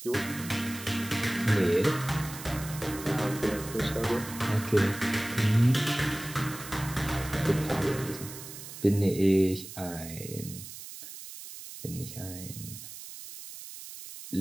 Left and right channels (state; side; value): noise; right; hiss, 12 dB below the sound